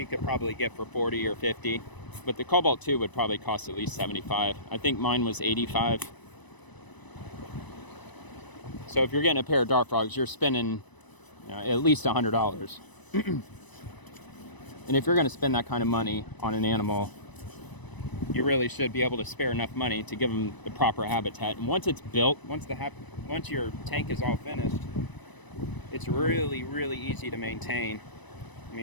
could probably get for 40 or 50, but the Cobalt 2 would probably cost at least 75. I think mine was 85. So if you're getting a pair of dart frogs, you're spending at least $100. And if you're going to spend that kind of money on an animal, you really should be able to spare enough money to give them the proper habitat. And once it's built, once your tank is all finished, it's really, really easy to maintain. I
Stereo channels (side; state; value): right; late; 1.0 ms